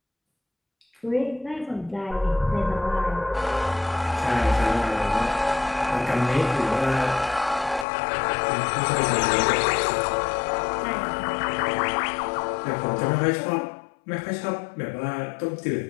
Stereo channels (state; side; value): drops out; right; at 7.9 s